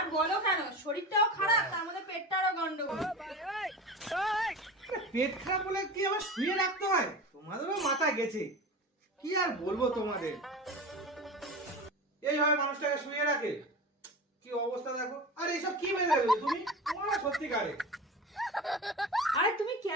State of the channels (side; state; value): both; normal; correlation 0.31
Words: বলো কেন, শরীরটাও খারাপ, তার মধ্যে পেটটারও গন্ডগোল। পেট খারাপ বলে কি আবার শুয়ে রাখতে হয়? তোমাদেরও মাথা গেছে, কি আর বলবো তোমাদের। এইভাবে মানুষটাকে শুয়ে রাখে, কি অবস্থা দেখো। আর এইসব কি মেনে তুমি? তোমরা সত্যিকারে আরে তুমি